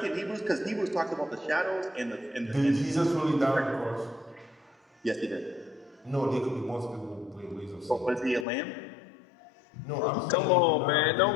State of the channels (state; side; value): drops out; right; at 8.5 s